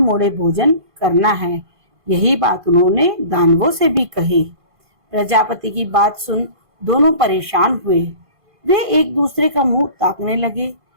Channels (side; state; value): left; late; 1.5 ms